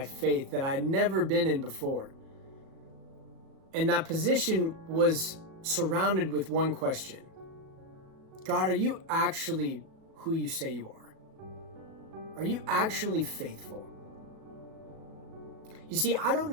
faith that I had never been in before. And that position was surrounded with one question. God, are you actually who you say you are? Are you actually faithful? You see, I don't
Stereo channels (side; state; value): left; late; 37 ms